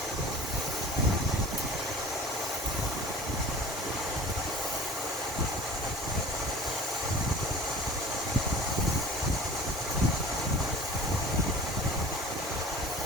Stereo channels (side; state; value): both; normal; correlation 0.42